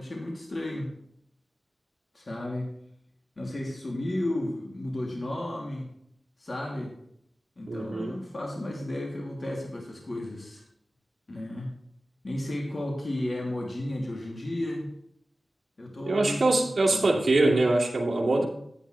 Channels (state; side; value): normal; both; correlation 0.95